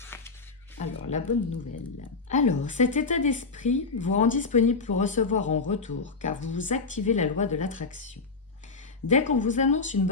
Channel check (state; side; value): quieter; right; 4.2 dB